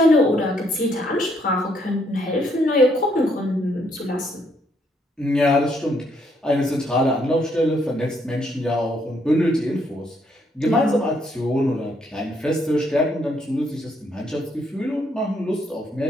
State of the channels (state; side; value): normal; both; correlation 0.72